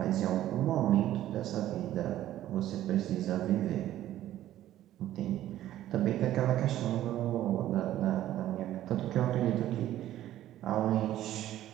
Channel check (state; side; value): quieter; left; 13.2 dB